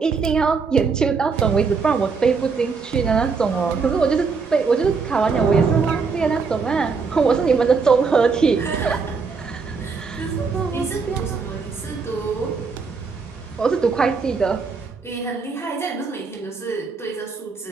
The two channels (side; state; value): left; quieter; 5.0 dB